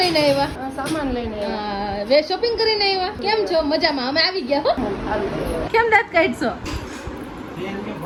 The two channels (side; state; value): both; identical; correlation 1.00